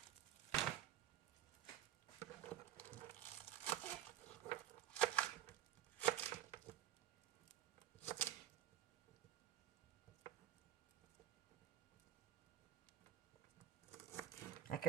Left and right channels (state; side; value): quieter; left; 12.3 dB